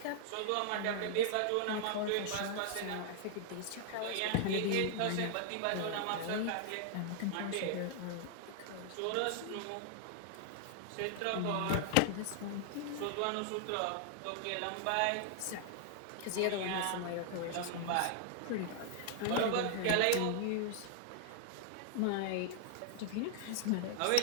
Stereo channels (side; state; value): both; different; correlation 0.00